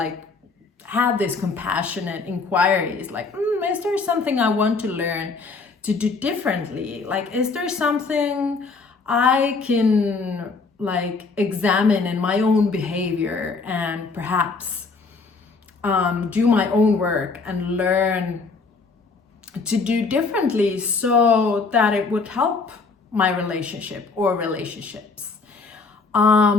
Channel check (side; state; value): right; quieter; 4.3 dB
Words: have this compassionate inquiries like, is there something I want to learn to do differently? Like, is there something I can examine in my own behavior and perhaps do my own work and learn to do differently so that it would help my relationship or relationships.